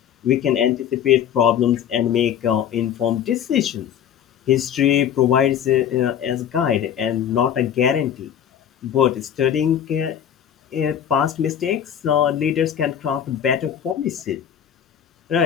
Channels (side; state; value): right; quieter; 9.3 dB